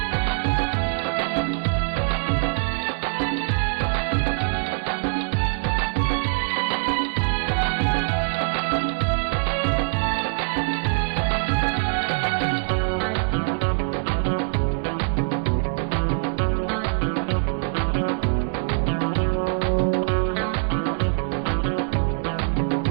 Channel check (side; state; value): left; silent; 58 dB below the other